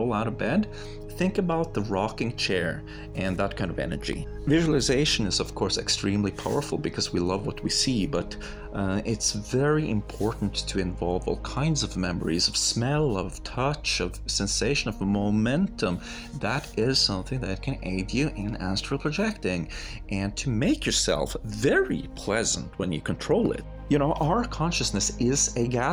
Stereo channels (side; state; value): both; identical; correlation 1.00